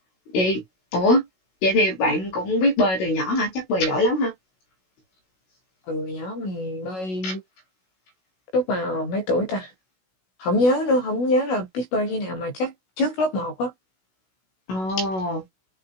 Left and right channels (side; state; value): right; late; 16 ms